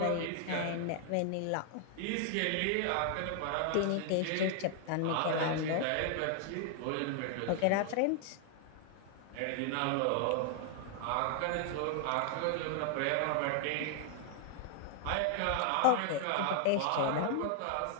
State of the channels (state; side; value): different; both; correlation 0.00